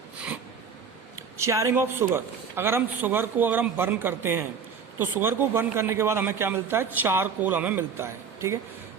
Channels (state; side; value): quieter; left; 6.3 dB